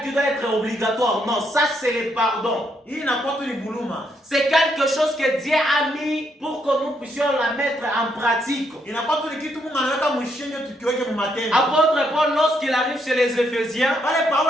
qui doit être obligatoire. Non, ça c'est le pardon. C'est quelque chose que Dieu a mis pour que nous puissions la mettre en pratique. Apôtre Paul, lorsqu'il arrive chez les Éphésiens,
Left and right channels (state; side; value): normal; both; correlation 0.75